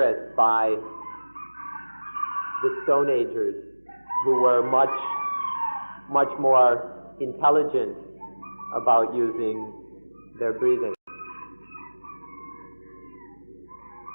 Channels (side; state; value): both; inverted; correlation -1.00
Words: by the Stone Agers, who were much more intelligent about using their breathing.